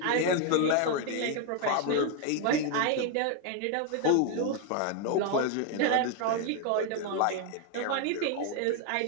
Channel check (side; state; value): both; different; correlation 0.01